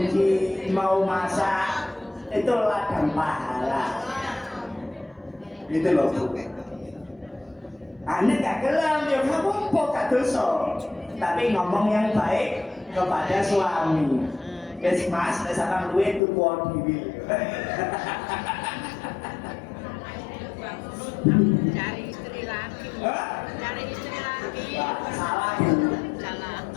mau masak, itu ladang pahala. Gitu loh Bu. Aneh gak gelam, ya kamu kok gak dosa. Tapi ngomong yang baik kepada suami. Wes Mas, wes akan duwe tuku dhewe. Cari istri lagi. Hah? Cari istri lagi. Salah Bu. Salah.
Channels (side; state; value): right; drops out; at 16.2 s